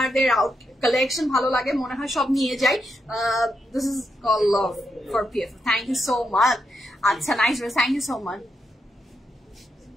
কালেকশন ভালো লাগে, মনে হয় সব নিয়ে যাই। This is call love for PFF, thank you so much. আচ্ছা, nice, thank you so much.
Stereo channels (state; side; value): normal; both; correlation 0.83